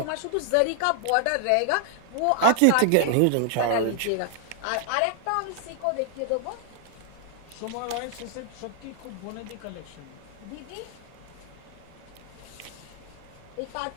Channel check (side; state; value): both; different; correlation 0.00